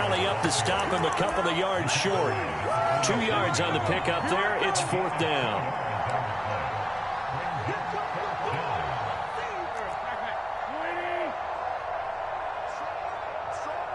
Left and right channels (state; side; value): identical; both; correlation 1.00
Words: up to stop him a couple of yards short. 2 yards on the pickup there. It's 4th down.